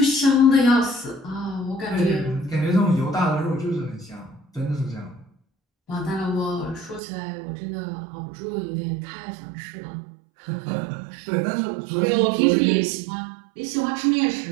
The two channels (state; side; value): drops out; left; at 7.0 s